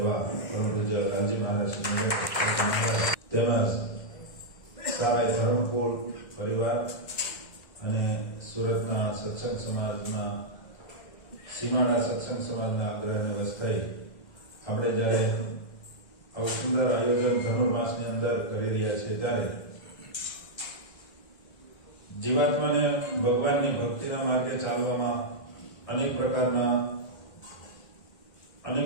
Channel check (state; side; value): late; right; 1.6 ms